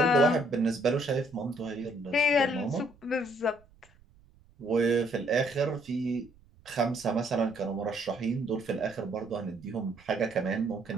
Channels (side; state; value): right; noise; rumble, 28 dB below the sound